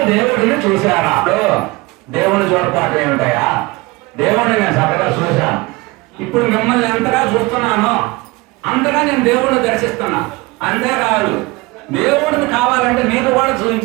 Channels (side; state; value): left; quieter; 22.9 dB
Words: దేవుడిని చూశారా? దేవుడిని చూడపాటు ఏమిటాయా, దేవుడిని నేను చక్కగా చూశాను. ఇప్పుడు మిమ్మల్ని ఎంతగా చూస్తున్నానో అంతగా నేను దేవుడిని దర్శిస్తున్నా. అంతేకాదు దేవుడిని కావాలంటే మీరు కూడా